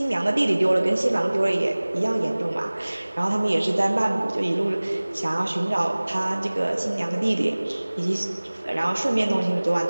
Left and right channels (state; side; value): inverted; both; correlation -1.00